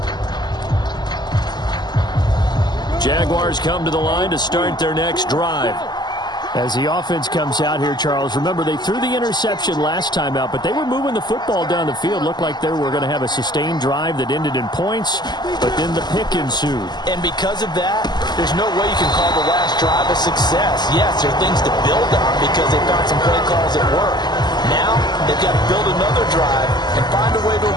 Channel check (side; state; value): right; late; 0.21 ms